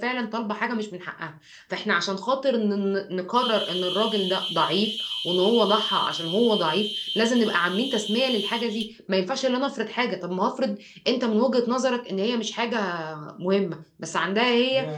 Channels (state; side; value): identical; both; correlation 1.00